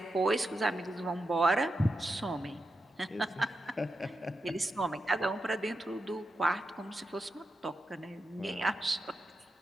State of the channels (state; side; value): normal; both; correlation 0.87